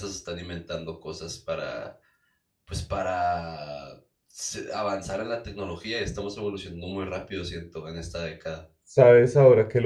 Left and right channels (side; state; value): both; identical; correlation 1.00